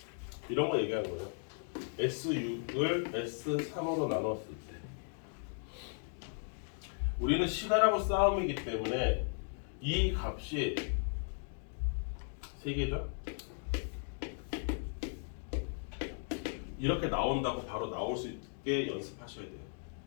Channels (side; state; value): right; silent; 53 dB below the other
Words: 이런 거 얘기하는 거예요. S6을 S3으로 나눴을 때 우리는 시간하고 싸움이기 때문에 이 값이 3개죠? 이렇게 나온다고 바로 나올 수 있게 연습하셔야 돼요.